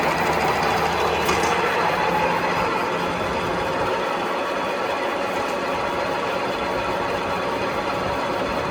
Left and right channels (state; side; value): identical; both; correlation 1.00